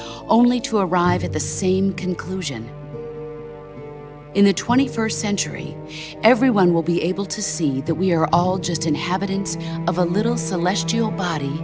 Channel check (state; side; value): identical; both; correlation 1.00